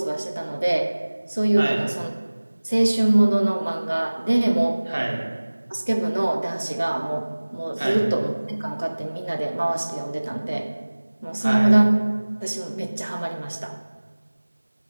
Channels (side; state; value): both; inverted; correlation -1.00